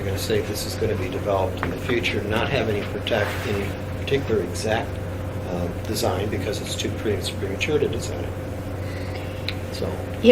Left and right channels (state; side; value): identical; both; correlation 1.00